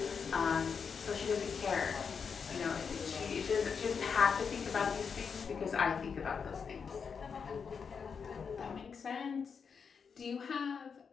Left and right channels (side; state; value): right; quieter; 6.1 dB